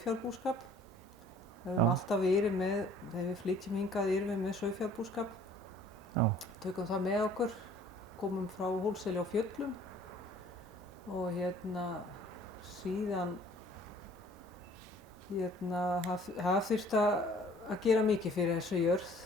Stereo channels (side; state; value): both; normal; correlation 0.54